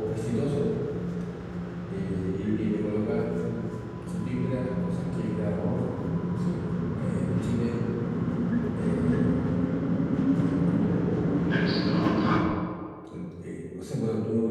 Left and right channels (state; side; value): identical; both; correlation 1.00